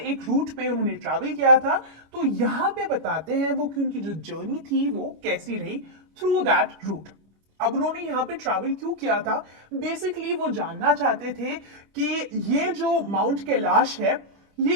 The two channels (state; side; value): late; left; 25 ms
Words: रूट पे उन्होंने ट्रैवल किया था। तो यहाँ पे बताते हैं वो कि उनकी जो जर्नी थी वो कैसी रही थ्रू दैट रूट। अब उन्होंने यहाँ पे ट्रैवल क्यों किया था? बेसिकली वो जानना चाहते थे कि ये जो माउंट कैलाश है ये